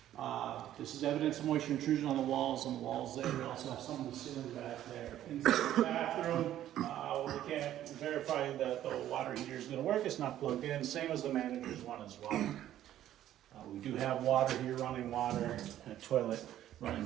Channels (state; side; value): quieter; left; 12.3 dB